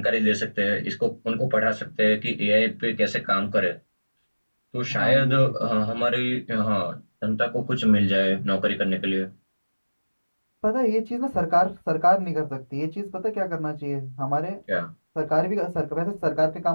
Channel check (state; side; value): inverted; both; correlation -1.00